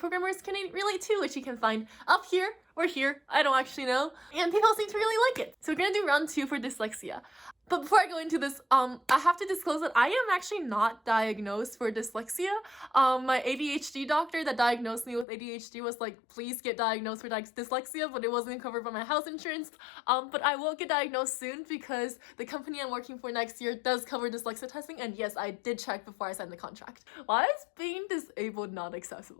can relate to, which you can find up here or here, I don't actually know, and people seem to really like it. So we're gonna do round 2 for dyslexia. But before I go into this, I have to disclose that I am actually not diagnosed for dyslexia. My ADHD doctor that diagnosed me with ADHD was like, please get diagnosed for dyslexia, but it wasn't covered by my health insurance. But I will get diagnosed soon because the company I'm working for next year does cover dyslexia testing, and yes, I did check before I signed the contract. Why is being disabled not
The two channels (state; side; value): drops out; right; at 15.2 s